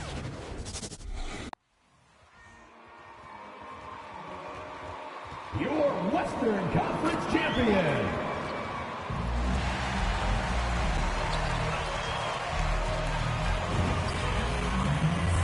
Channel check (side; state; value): both; identical; correlation 1.00